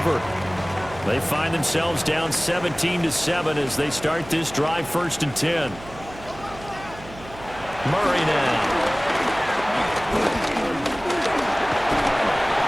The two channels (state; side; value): noise; right; hum, 17 dB below the sound